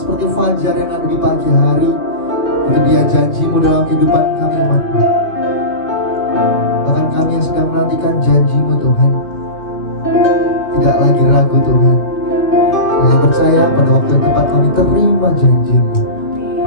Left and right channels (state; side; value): late; right; 2.4 ms